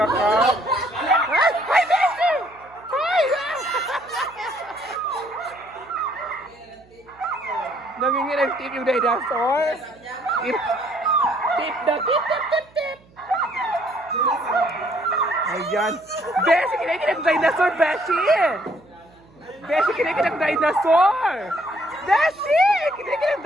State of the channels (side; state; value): right; noise; hum, 28 dB below the sound